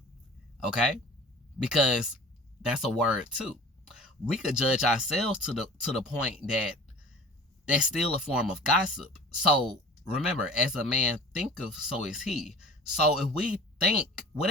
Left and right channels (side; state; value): both; normal; correlation 0.42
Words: Okay? Because that's a word too. We could judge ourselves to the point that that's still a form of gossip. So remember, as a man thinketh, so is he. So if we think,